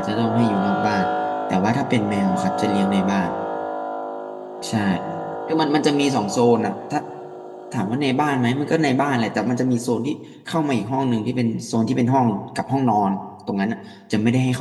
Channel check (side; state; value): both; identical; correlation 1.00